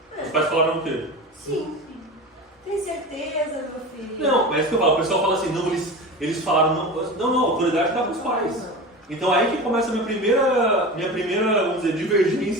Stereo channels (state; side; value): normal; both; correlation 0.30